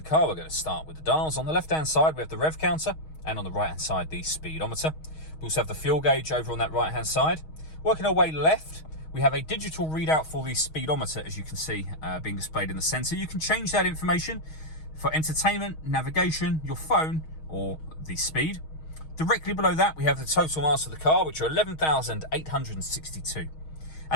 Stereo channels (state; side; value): late; right; 6.4 ms